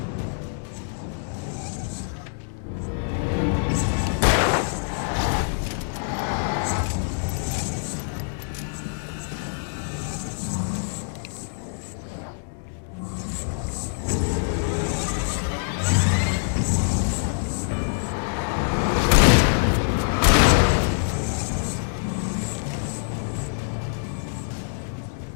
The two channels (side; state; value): right; silent; 62 dB below the other